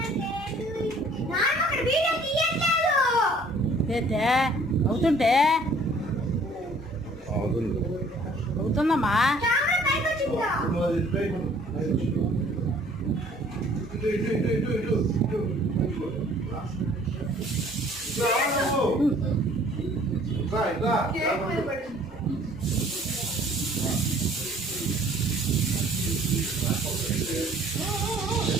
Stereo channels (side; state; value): both; normal; correlation 0.56